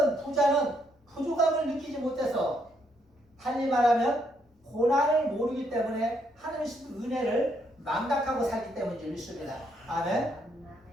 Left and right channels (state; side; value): normal; both; correlation 0.74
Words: 부자는 부족함을 느끼지 못해서 달리 말하면 고난을 모르기 때문에 하나님의 은혜를 망각하고 살기 때문인 줄 믿습니다. 아멘.